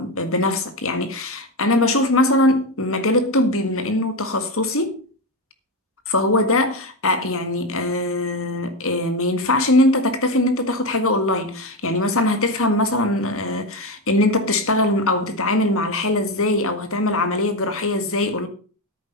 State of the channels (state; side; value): normal; both; correlation 0.13